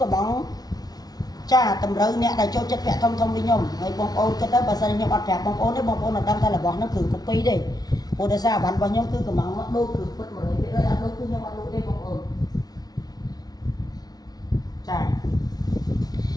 bóng chả tầm rơi nè đại cho chất bẹ thông đi nhung người bông ôn cái đó bà sao nhung ăn bẹ bông ôn đấy bông ôn là đâm ra là bóng nó cử cục pi đi ủa tại sao bạn bao nhiêu cứ cầm máu đôi cử bất mới biết ơi đôi cứ nhau bạn đôi đây bọc ổn chà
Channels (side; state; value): right; late; 0.19 ms